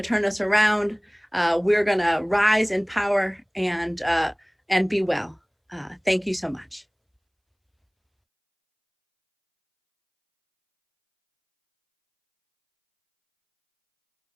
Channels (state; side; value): identical; both; correlation 1.00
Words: turn us around. We're gonna rise in power and be well. Thank you so much.